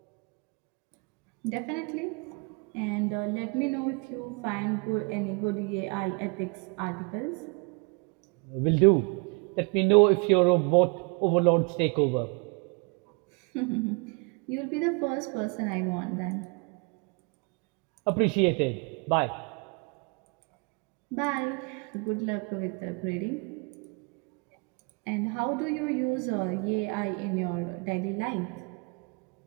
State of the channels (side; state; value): left; quieter; 32.7 dB